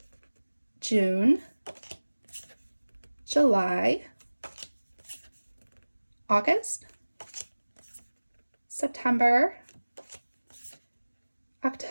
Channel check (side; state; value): both; inverted; correlation -1.00